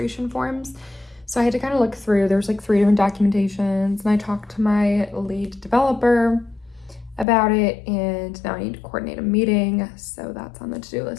forms. So I had to kind of look through, there's 3 different documentations, and I talked to my lead developer about it, and now I need to coordinate a meeting. So that's on the to-do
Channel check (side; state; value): right; drops out; at 7.2 s